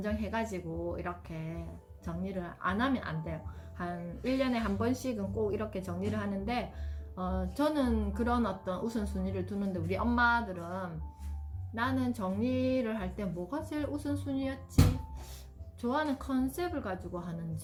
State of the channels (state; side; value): identical; both; correlation 1.00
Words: 이렇게 정리를 안 하면 안 돼요. 한 1년에 한 번씩은 꼭 이렇게 정리를 하는데 저는 그런 어떤 우선순위를 두는데 우리 엄마들은 나는 정리를 할 때 뭐가 제일 우선순위였지? 좋아하는 컨셉을 가지고